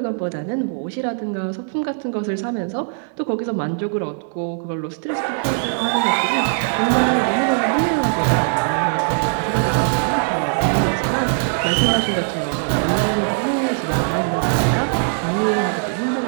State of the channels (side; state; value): left; silent; 65 dB below the other